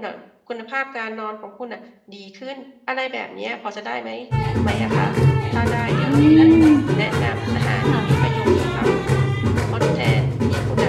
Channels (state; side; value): identical; both; correlation 1.00